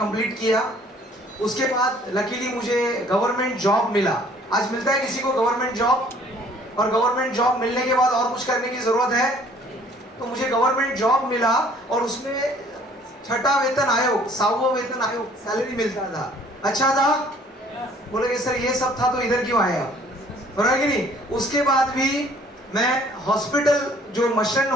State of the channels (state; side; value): normal; both; correlation 0.56